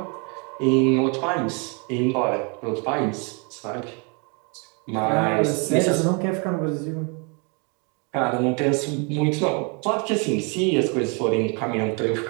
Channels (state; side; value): quieter; left; 33.9 dB